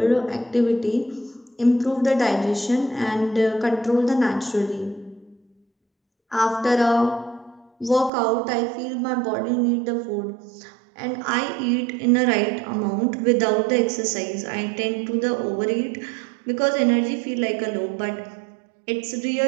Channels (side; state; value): left; drops out; at 8.1 s